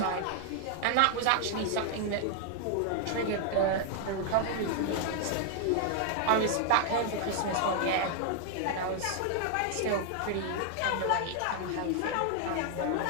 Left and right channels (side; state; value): both; different; correlation 0.00